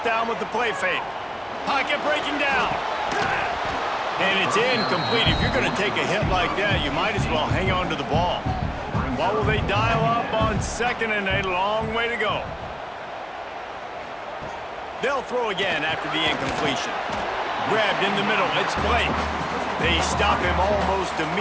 down with the play fake. Pocket breaking down. And it's incomplete. If you're going to take a hit like that, you might as well hang on to the ball. What will they dial up on second and a long way to go? They'll throw again after the incompletion. Grabbed in the middle. It's Blake. They stop him almost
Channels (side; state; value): both; identical; correlation 1.00